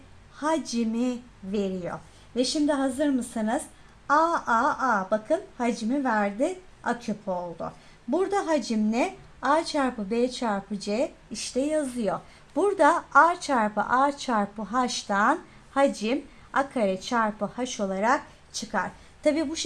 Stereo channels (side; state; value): both; identical; correlation 1.00